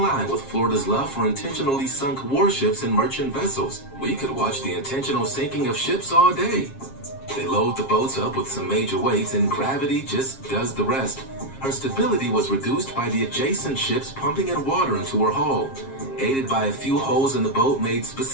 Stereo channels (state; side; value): late; right; 7.4 ms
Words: line with Florida's love for intentionally sunk warships and merchant vessels. We could watch the intentional sinking of ships all day. They load the boats up with some major weights and gravity just does the rest. Her stability was reduced by the adjacent ships pumping in water into her hull. Aided by a few holes in the boat made